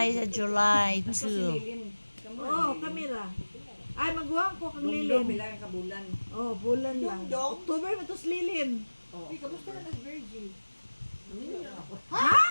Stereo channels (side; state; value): both; inverted; correlation -1.00